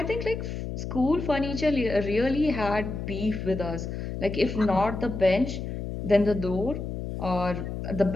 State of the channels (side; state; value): left; noise; hum, 5 dB below the sound